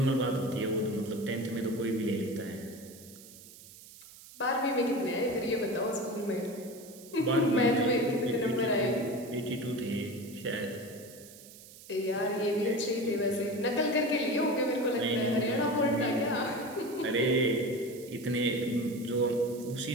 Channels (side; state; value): right; noise; hiss, 19 dB below the sound